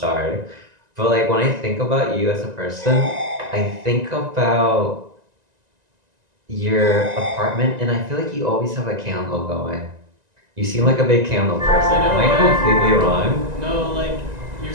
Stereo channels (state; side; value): late; left; 1.9 ms